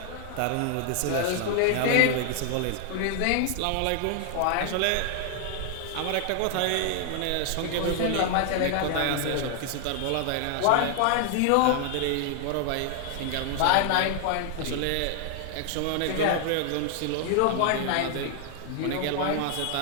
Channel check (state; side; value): different; both; correlation 0.00